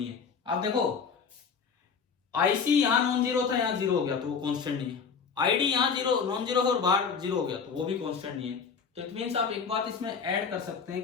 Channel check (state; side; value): quieter; right; 6.0 dB